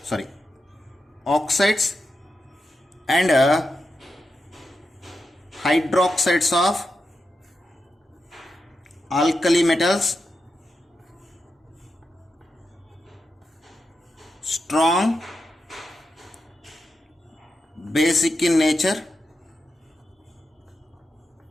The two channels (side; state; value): both; normal; correlation 0.88